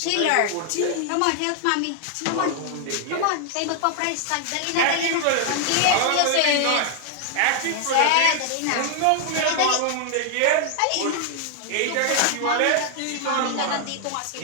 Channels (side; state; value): both; different; correlation 0.00